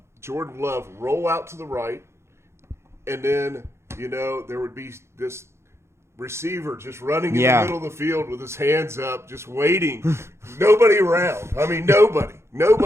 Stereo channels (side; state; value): left; late; 0.13 ms